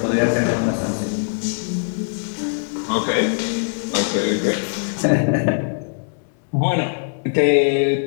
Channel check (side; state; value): right; silent; digital silence